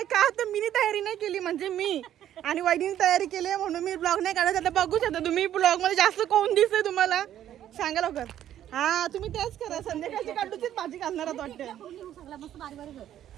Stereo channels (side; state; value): left; quieter; 11.4 dB